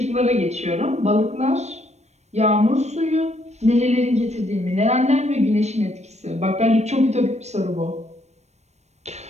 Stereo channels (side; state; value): left; late; 0.32 ms